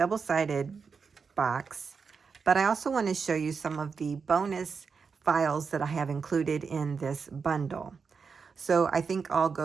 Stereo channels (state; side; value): quieter; left; 5.5 dB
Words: box, but I also want to show you some of the bonus files that I have included in this bundle. So I think I'll